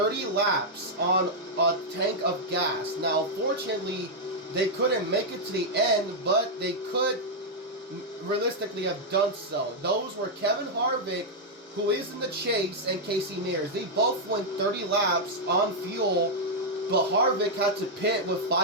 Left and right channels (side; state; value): both; normal; correlation -0.03